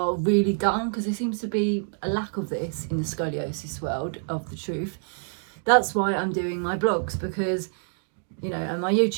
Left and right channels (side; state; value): left; silent; digital silence